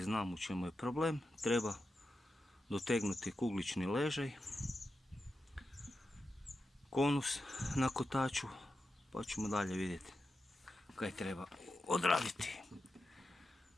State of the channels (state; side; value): normal; both; correlation 0.90